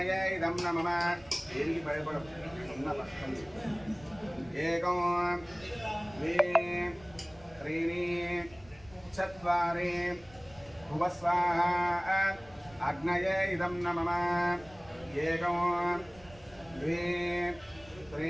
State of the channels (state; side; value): noise; right; rumble, 23 dB below the sound